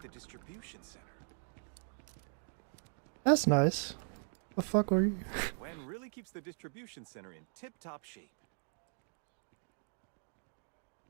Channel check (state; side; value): silent; left; 52 dB below the other